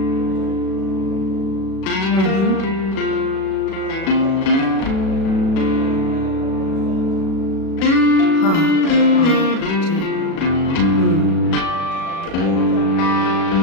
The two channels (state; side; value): late; right; 37 ms